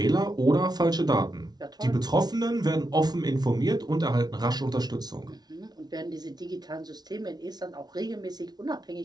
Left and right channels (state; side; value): late; left; 0.19 ms